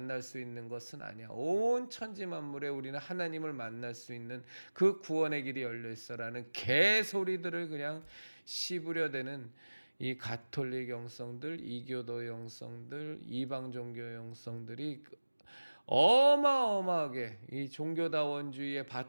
수 있는 것은 아니야. 온 천지 만물에 우리는 하나님을 만날 수 있는 그 구원의 길이 열려 있어라는 개소리들을 그냥 씹으려대는 이 가톨릭 영성들, 이교도 영성들, 이방 종교 영성들이 어마어마하게 이 종교다원주의의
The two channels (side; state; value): both; inverted; correlation -1.00